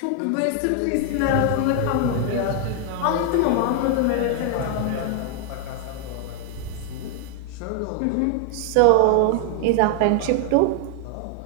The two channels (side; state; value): both; different; correlation 0.00